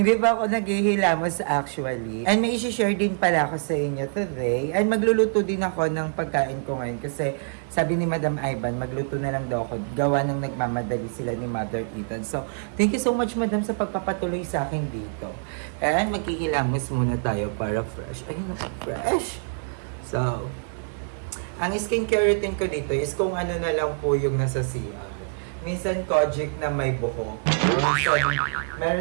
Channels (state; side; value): silent; left; digital silence